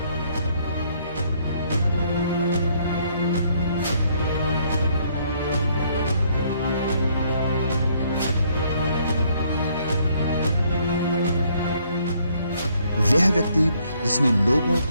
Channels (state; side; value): inverted; both; correlation -0.67